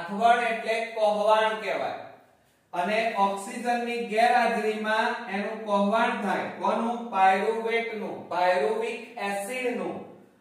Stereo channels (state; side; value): identical; both; correlation 1.00